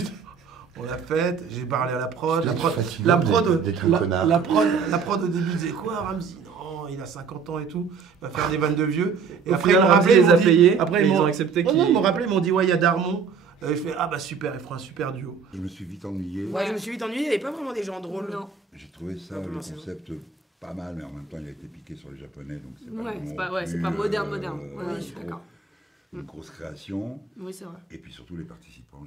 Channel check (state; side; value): quieter; left; 5.8 dB